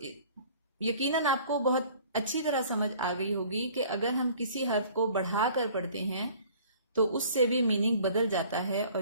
یقیناً آپ کو بہت اچھی طرح سمجھ آ گئی ہوگی کہ اگر ہم کسی حرف کو بڑھا کر پڑھتے ہیں تو اس سے بھی میننگ بدل جاتا ہے، اور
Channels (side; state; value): both; inverted; correlation -0.51